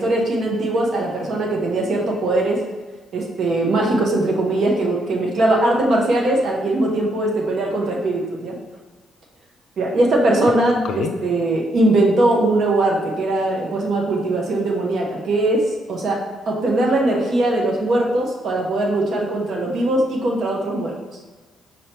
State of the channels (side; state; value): both; normal; correlation 0.75